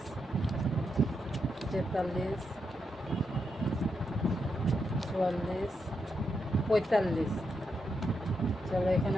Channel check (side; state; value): both; normal; correlation 0.83